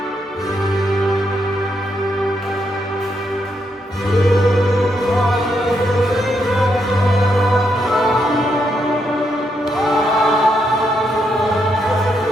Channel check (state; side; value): normal; both; correlation 0.79